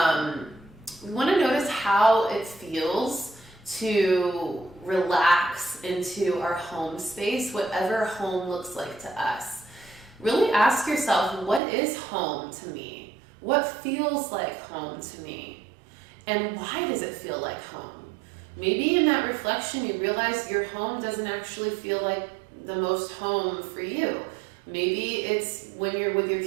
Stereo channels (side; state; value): left; drops out; at 11.6 s